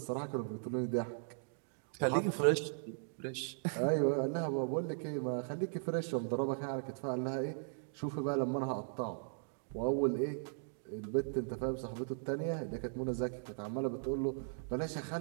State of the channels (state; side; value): silent; left; digital silence